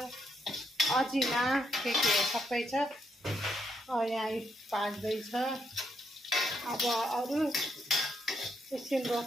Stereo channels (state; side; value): normal; both; correlation 0.76